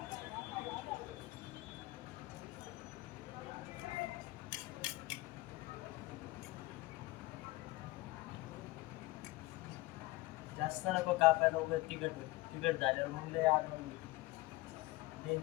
जास्त नको कापायला, उगाच तिखट झाल्यावर मग लय आनंद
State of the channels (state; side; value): quieter; right; 20.7 dB